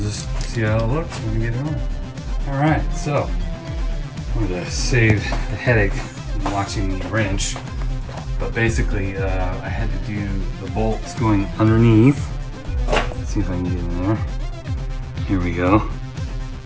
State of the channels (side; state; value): both; identical; correlation 1.00